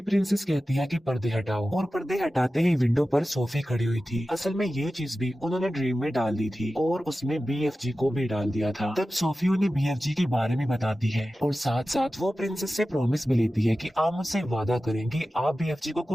प्रिंसेस कहती है कि पर्दे हटाओ, और पर्दे हटाते ही विंडो पर सोफी खड़ी हुई थी। असल में ये चीज भी उन्होंने ड्रीम में डाल दी थी, और उसमें बीएफजी को भी डाल दिया था। तब सोफी उन्हें बीएफजी के बारे में बताती है, और साथ साथ वो प्रिंसेस से प्रॉमिस भी लेती है कि आप मुझसे वादा करें कि आप बीएफजी को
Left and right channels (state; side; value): normal; both; correlation 0.94